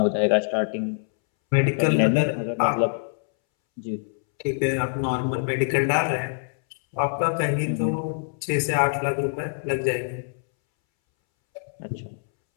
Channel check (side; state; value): right; silent; 62 dB below the other